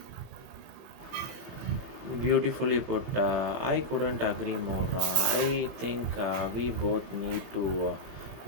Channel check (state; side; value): late; left; 21 ms